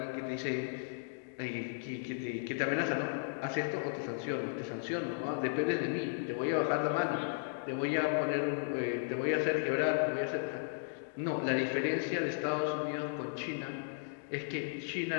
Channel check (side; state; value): right; silent; digital silence